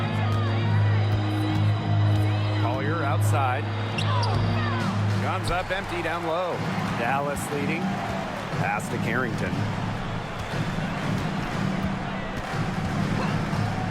Collier outside. Comes up empty down low. Dallas leading. Pass to Carrington.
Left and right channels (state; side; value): identical; both; correlation 1.00